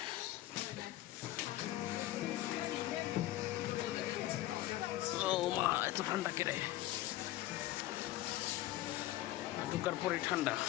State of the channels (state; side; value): quieter; right; 15.7 dB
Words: ও মা এত ঠান্ডা কেড়ে, ঢুকার পরে ঠান্ডা